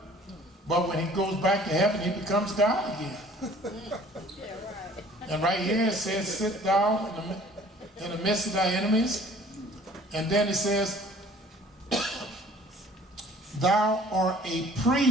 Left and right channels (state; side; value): normal; both; correlation 0.52